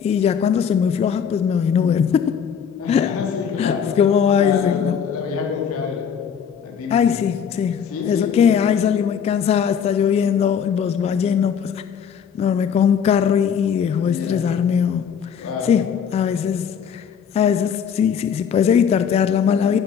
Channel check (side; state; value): right; quieter; 7.5 dB